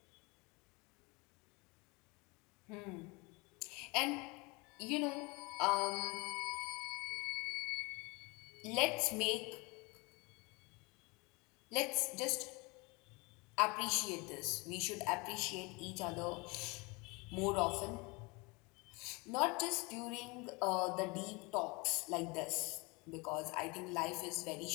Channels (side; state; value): right; quieter; 27.1 dB